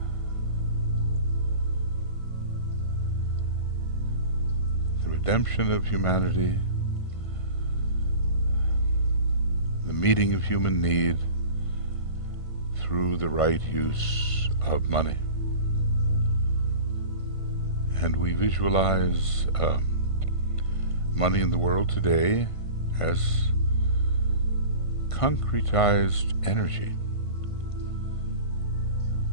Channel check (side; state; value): right; late; 1.5 ms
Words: The redemption of humanity, the meeting of human need through the right use of money. And we visualize money in the world today as concretized energy.